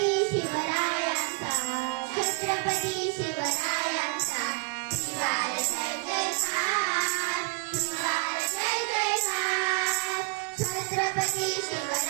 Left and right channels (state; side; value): quieter; left; 33.0 dB